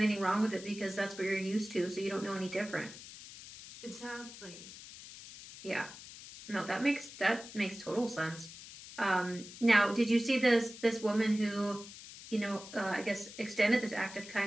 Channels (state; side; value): noise; left; hiss, 15 dB below the sound